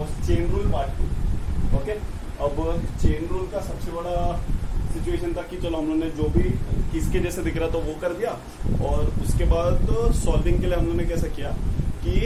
chain rule part 2। Okay, अब चेन रूल का सबसे बड़ा सिचुएशन था कि चलो हम लोगों ने जो भी किसके जैसे दिख रहा था वो कर दिया, और उसके बाद सॉल्विंग के लिए हम लोगों ने कैसा किया कि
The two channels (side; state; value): both; identical; correlation 1.00